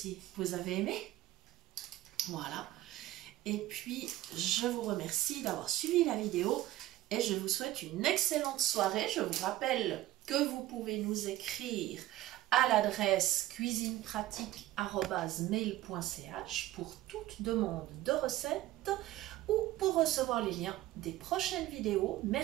vous avez aimé. Voilà. Et puis, je vous remercie d'avoir suivi la vidéo et je vous souhaite une excellente soirée. Je vous rappelle que vous pouvez nous écrire à l'adresse cuisinepratique@mail.ch pour toute demande de recette ou pour recevoir les liens des prochaines vidéos.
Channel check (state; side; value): quieter; left; 15.7 dB